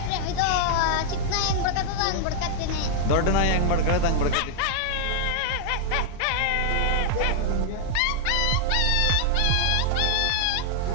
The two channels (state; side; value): different; both; correlation 0.00